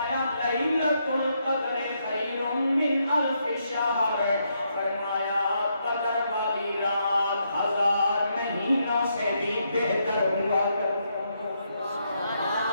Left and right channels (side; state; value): both; inverted; correlation -0.78